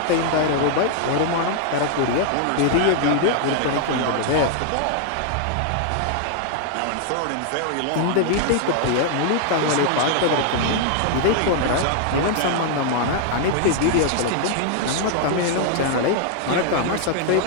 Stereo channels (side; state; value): both; different; correlation 0.00